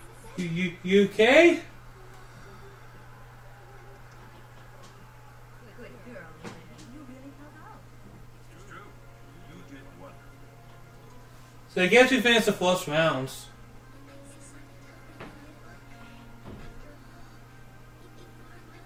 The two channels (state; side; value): identical; both; correlation 1.00